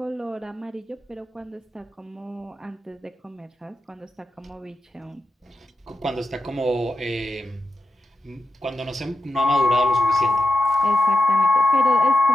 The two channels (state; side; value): normal; both; correlation 0.89